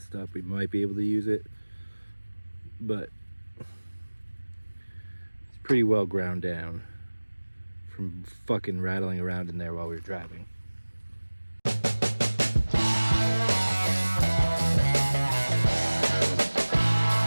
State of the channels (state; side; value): inverted; both; correlation -1.00